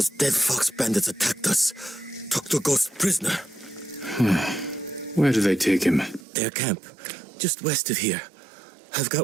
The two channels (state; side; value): drops out; left; at 6.2 s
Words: dead fox bandits attacked us. Took the ghost prisoner. Where do they take him? Their camp, just west of here. I've